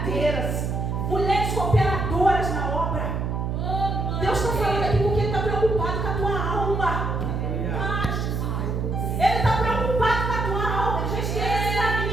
mulheres cooperadoras na obra. Deus está falando aqui porque Ele está preocupado com a tua alma. Ele está preocupado com a tua alma. Ele já esquece da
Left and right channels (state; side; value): noise; right; hum, 1 dB below the sound